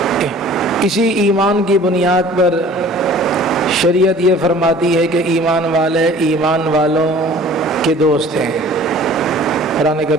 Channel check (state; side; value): normal; both; correlation 0.48